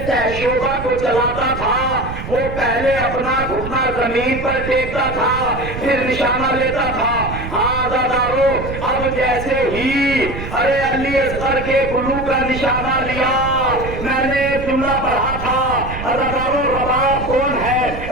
شعبہ کو چلاتا تھا وہ پہلے اپنا گھٹنا زمین پر ٹیکتا تھا پھر نشانہ لیتا تھا. ہاں عزادارو اب جیسے ہی علی اصغر کے گلو کا نشانہ لیا, میں نے ایک جملہ پڑھا تھا عزادارو رباب کون ہے؟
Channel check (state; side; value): noise; right; rumble, 8 dB below the sound